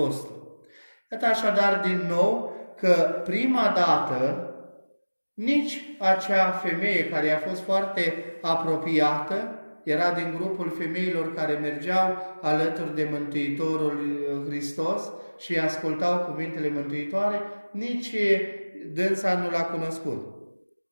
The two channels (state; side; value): inverted; both; correlation -1.00